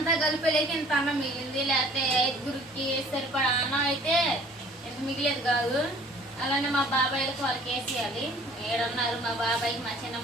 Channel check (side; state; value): both; normal; correlation 0.53